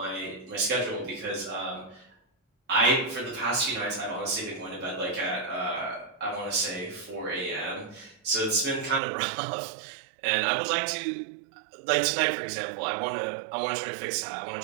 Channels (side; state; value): left; drops out; at 9.0 s